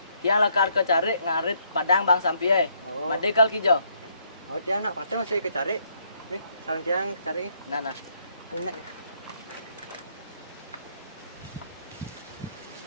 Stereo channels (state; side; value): inverted; both; correlation -0.71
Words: Tiang lakar ke cari ngarit padang bang sampie. Oh. Made kal kijo. Oh tiang nak patah masih ke cari. Nih, sarang tiang cari. Nana. Ini.